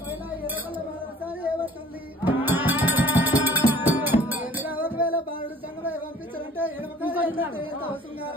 ఒకవేళ బాలుడు సంగమై పంపించాలంటే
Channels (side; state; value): both; normal; correlation 0.52